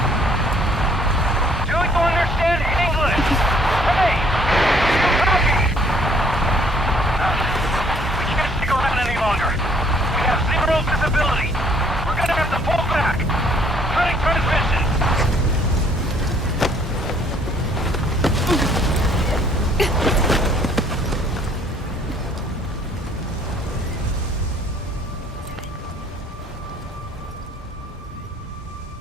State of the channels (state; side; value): normal; both; correlation 0.62